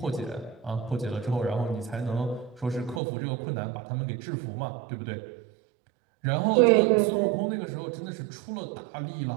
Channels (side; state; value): left; drops out; at 3.0 s